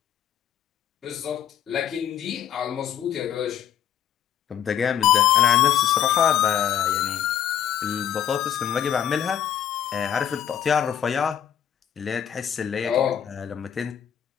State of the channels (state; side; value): quieter; right; 9.9 dB